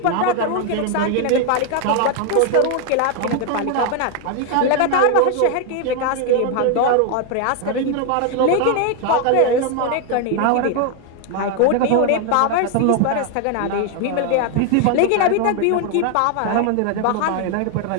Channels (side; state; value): both; different; correlation 0.00